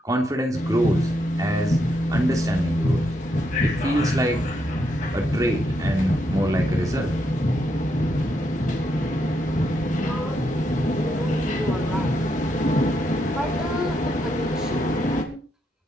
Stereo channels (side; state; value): both; normal; correlation 0.79